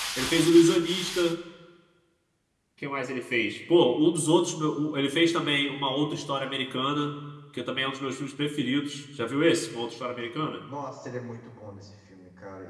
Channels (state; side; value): identical; both; correlation 1.00